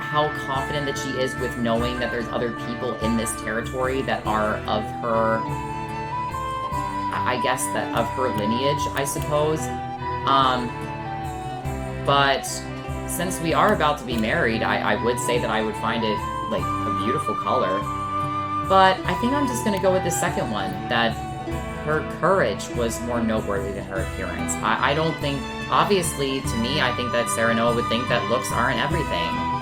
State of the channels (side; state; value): both; identical; correlation 1.00